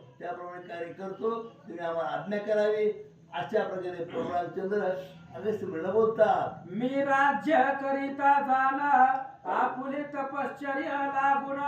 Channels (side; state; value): both; identical; correlation 1.00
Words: त्याप्रमाणे कार्य करतो, तुम्ही आम्हाला आज्ञा करावी. अशा प्रकारे प्रभू रामचंद्र अगस्त्य मुनीला बोलतात. मी राज्य करिता जाना, आपुले तपश्चर्या लागून,